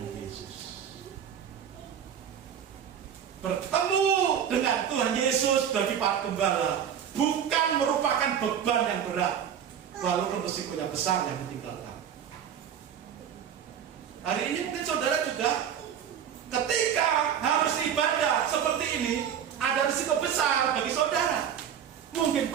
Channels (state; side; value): quieter; left; 8.7 dB